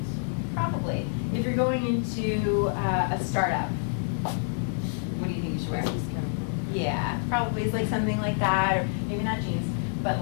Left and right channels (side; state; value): right; silent; digital silence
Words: Probably. If you're going into a startup, what do you think you should wear? Yeah, probably it's like something like that, or maybe not jeans, but